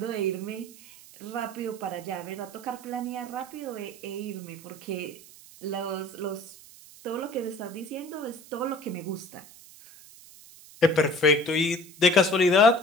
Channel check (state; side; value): noise; right; hiss, 20 dB below the sound